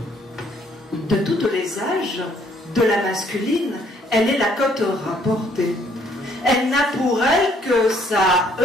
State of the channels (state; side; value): normal; both; correlation 0.65